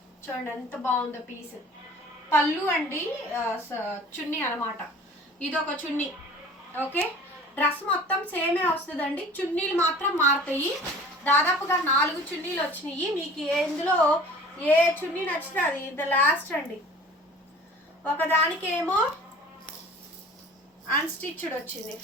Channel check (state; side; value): normal; both; correlation 0.45